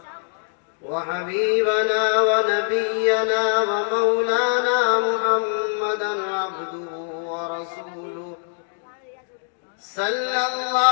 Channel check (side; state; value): right; silent; digital silence